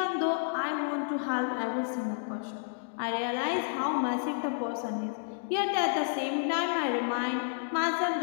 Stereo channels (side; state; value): right; silent; digital silence